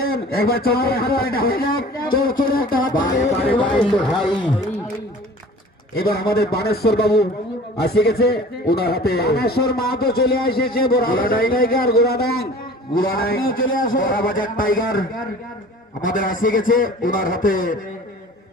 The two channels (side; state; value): both; normal; correlation 0.44